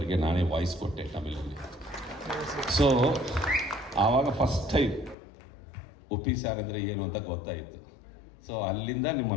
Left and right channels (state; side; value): drops out; right; at 5.2 s